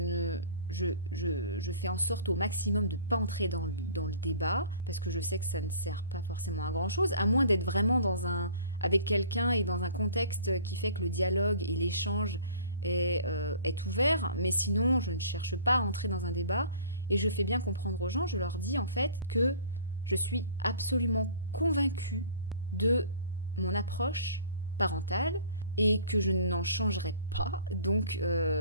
fais en sorte au maximum de ne pas entrer dans le débat, parce que je sais que ça ne sert pas forcément à grand-chose, à moins d'être vraiment avec quelqu'un et dans un contexte qui fait que le dialogue et l'échange est ouvert, mais sinon, je ne cherche pas à entrer dans un débat, et je fais bien comprendre aux gens, je leur dis en fait que je suis absolument convaincue de mon approche parentale et que je n'en changerai pas. Donc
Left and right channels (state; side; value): inverted; both; correlation -0.48